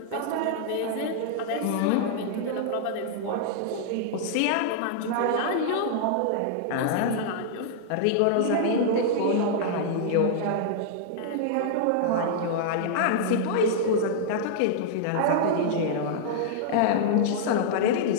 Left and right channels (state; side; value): different; both; correlation -0.01